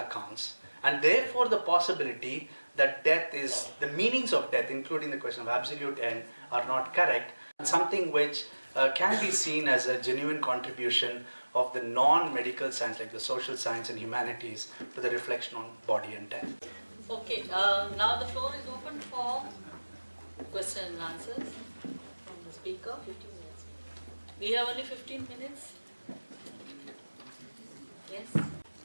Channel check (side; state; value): both; inverted; correlation -1.00